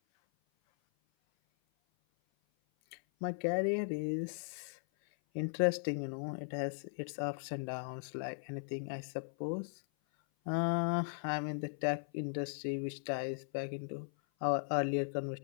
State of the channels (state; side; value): silent; right; 53 dB below the other